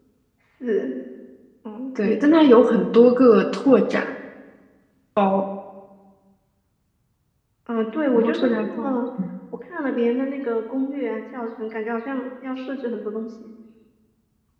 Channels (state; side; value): identical; both; correlation 1.00